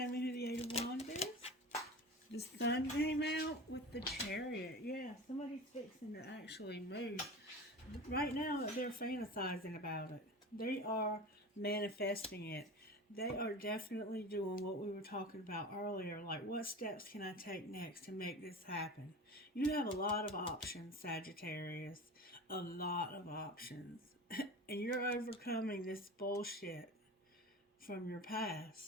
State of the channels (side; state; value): both; normal; correlation 0.33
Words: me who the Eight of Wands is? The Sun came out with the Chariot. Yeah, somebody's fixing to actually move. Right now, they're fantasizing about it. They are manifesting it. They are definitely doing what we were talking about earlier. Like, what steps can I take next to make this happen? You have a lot of options, Sagittarius. A lot of options. And you're overcoming this bullshit from your